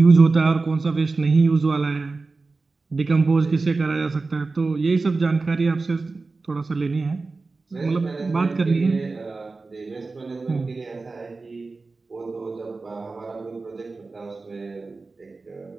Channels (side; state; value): left; quieter; 3.8 dB